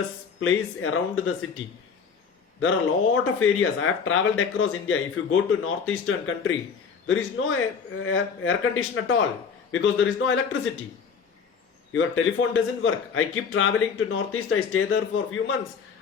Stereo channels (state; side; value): quieter; right; 6.1 dB